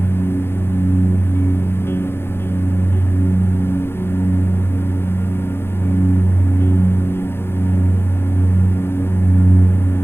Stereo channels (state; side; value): late; right; 0.11 ms